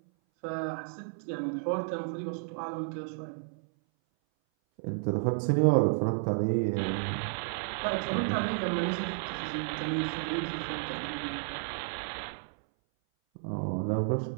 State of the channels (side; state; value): left; silent; 57 dB below the other